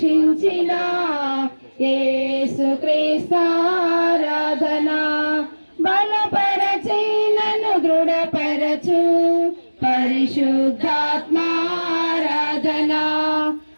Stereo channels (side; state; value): both; inverted; correlation -1.00